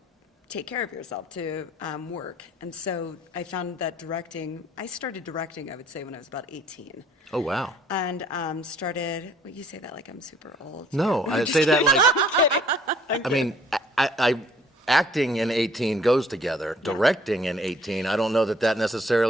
take care of yourself, to work. And so I found that I started directing, I would say, when I was about 18. Oh, wow. And started, well, you say that like I'm super old. No, I say that like, I mean, I acting in 18 goes together. Directing in 18, I don't know that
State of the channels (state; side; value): normal; both; correlation 0.58